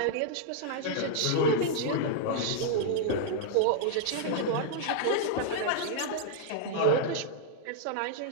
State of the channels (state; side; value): different; both; correlation -0.01